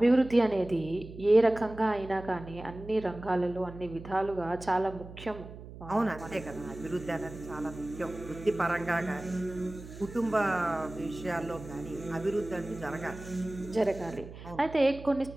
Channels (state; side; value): noise; right; hum, 14 dB below the sound